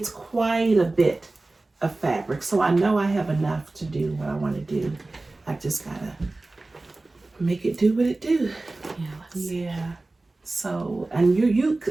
quite a bit of fabric. So I know I have enough to do what I want to do. I just got to make it do what it do. Yeah. So, and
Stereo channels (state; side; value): quieter; left; 3.1 dB